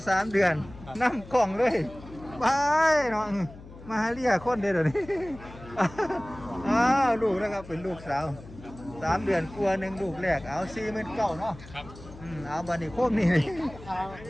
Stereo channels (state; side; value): noise; left; hum, 17 dB below the sound